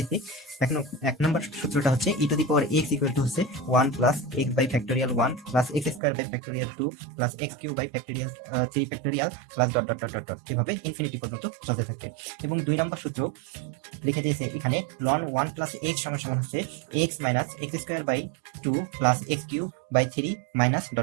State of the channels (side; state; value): left; drops out; at 6.0 s